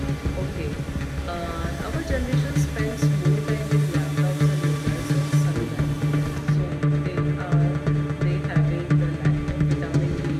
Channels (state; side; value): identical; both; correlation 1.00